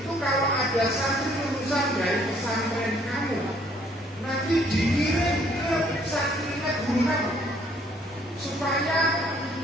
kalau ada satu lulusan dari pesantren kamu, nanti dikirim ke santrinya guru kamu, supaya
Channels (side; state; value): both; normal; correlation 0.63